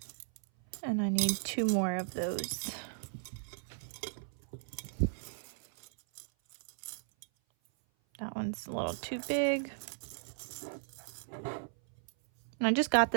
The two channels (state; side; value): silent; left; 54 dB below the other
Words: And I need 2 more of those. That one's a little too big. And I just got